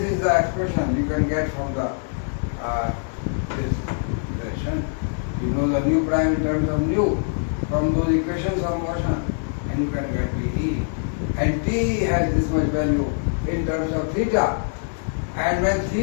is the expression you can get from the this relation. You know the nu prime in terms of nu from those equations of motion, and you can get TE. And T has this much value in terms of theta. And when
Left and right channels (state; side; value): silent; right; digital silence